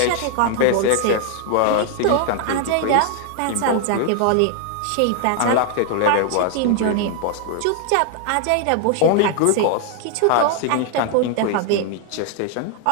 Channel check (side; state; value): both; different; correlation 0.00